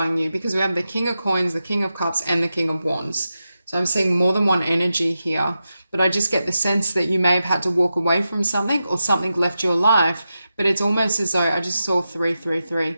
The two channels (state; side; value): inverted; both; correlation -0.90